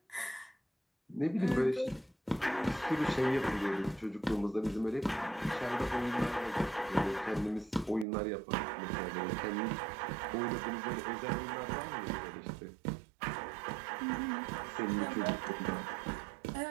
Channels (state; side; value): drops out; left; at 8.1 s